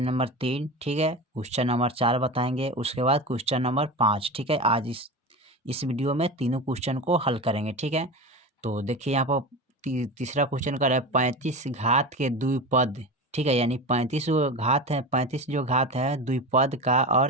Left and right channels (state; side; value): normal; both; correlation 0.26